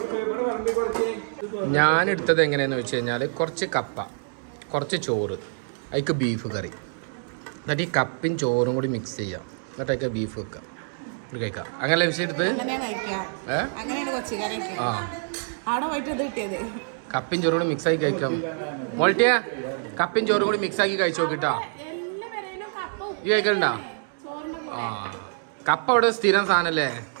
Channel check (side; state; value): left; silent; 61 dB below the other